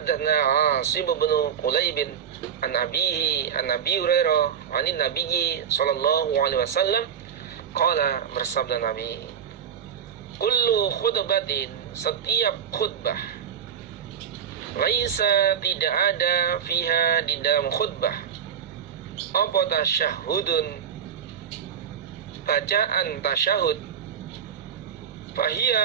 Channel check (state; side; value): quieter; left; 8.2 dB